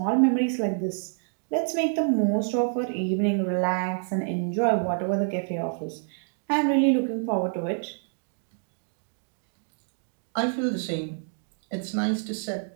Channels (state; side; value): silent; left; 60 dB below the other